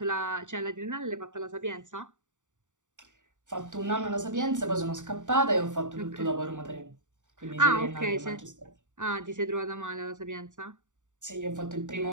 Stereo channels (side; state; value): left; late; 0.86 ms